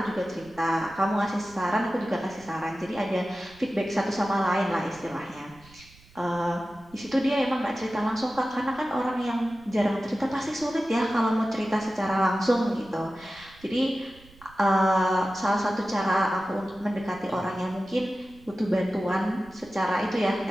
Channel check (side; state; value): right; noise; rumble, 25 dB below the sound